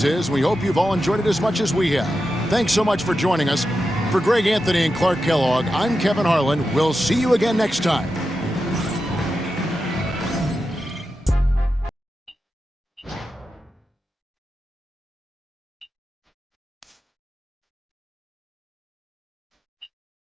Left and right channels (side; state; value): both; normal; correlation 0.90